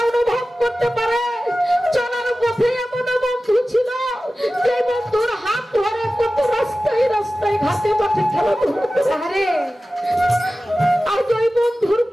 অনুভব করতে পারে চলার পথে এমন বন্ধু ছিল, যে বন্ধুর হাত ধরে কত রাস্তায় রাস্তায় ঘাটে মাঠে খেলাধুলা করে, আজ ওই বন্ধুর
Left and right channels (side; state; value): both; normal; correlation 0.95